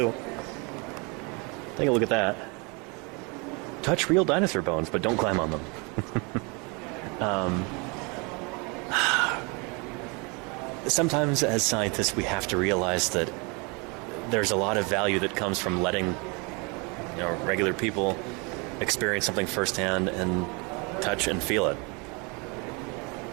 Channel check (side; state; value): left; quieter; 30.4 dB